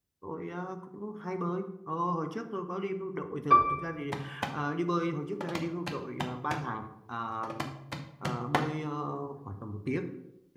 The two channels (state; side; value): identical; both; correlation 1.00